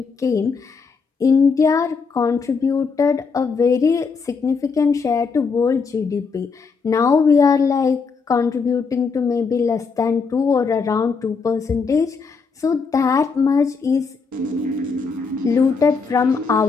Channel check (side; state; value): right; quieter; 5.0 dB